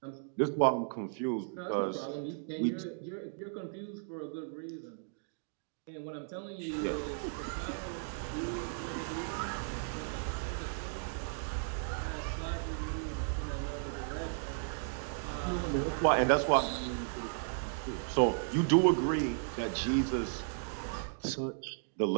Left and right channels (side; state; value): left; silent; digital silence